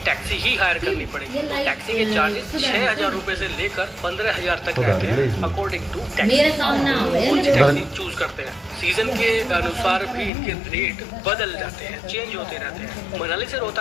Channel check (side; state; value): right; drops out; at 10.3 s